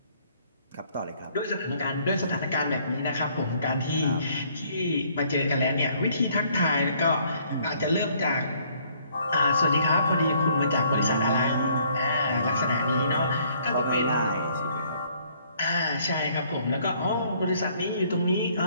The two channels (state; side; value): inverted; both; correlation -0.64